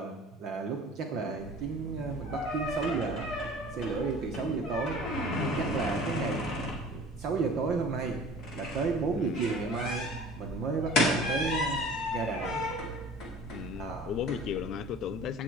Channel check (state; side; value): normal; both; correlation 0.44